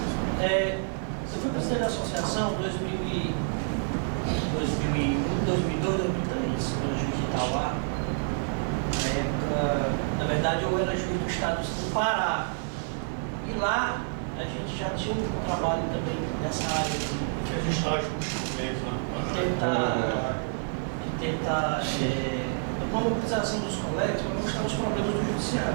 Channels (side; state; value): left; silent; digital silence